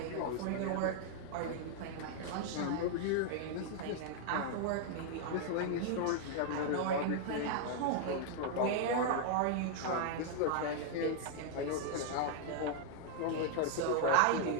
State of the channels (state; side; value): different; both; correlation 0.00